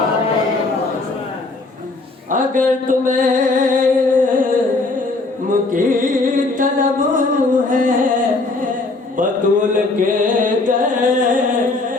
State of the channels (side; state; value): right; quieter; 3.4 dB